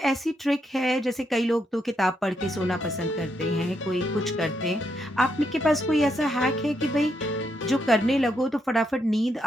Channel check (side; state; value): both; normal; correlation 0.79